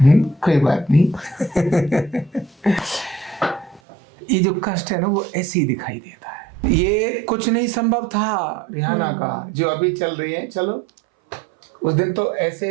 नहीं, कोई बात नहीं। ये जो कष्ट है ना वो ऐसे ही दिखाई देता है। ये कुछ नहीं संभव था रिहाना का, जो अभी चल रही है। चलो, उस दिन तो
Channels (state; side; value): drops out; left; at 3.8 s